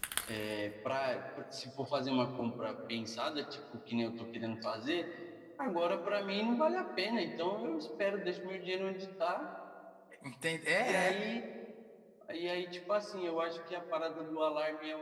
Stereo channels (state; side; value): identical; both; correlation 1.00